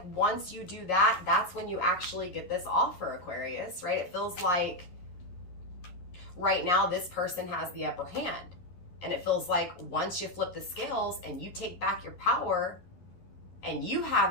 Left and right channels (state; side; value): late; right; 11 ms